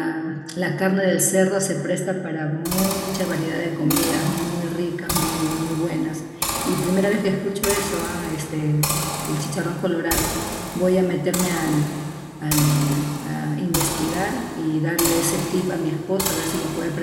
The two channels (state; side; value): identical; both; correlation 1.00